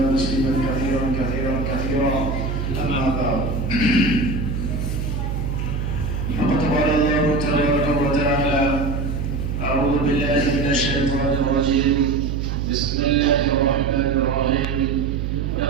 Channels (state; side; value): noise; right; hum, 2 dB below the sound